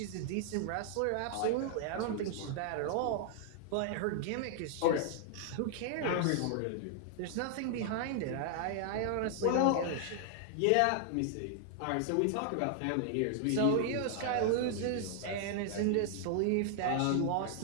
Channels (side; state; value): both; different; correlation 0.00